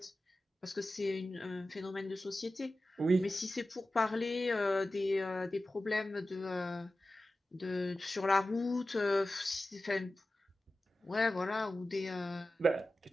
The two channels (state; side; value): normal; both; correlation 0.94